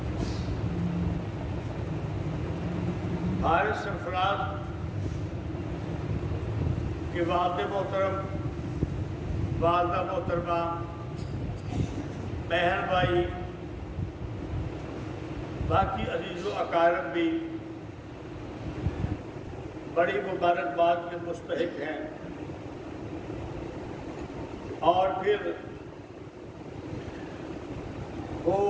حارث سرفراز کے والد محترم، والدہ محترمہ، بہن بھائی، باقی عزیز و اقارب بھی بڑی مبارکباد کے مستحق ہیں، اور پھر وہ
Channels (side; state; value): both; identical; correlation 1.00